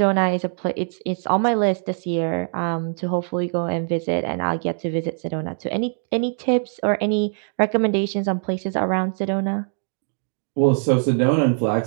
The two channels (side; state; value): left; silent; 64 dB below the other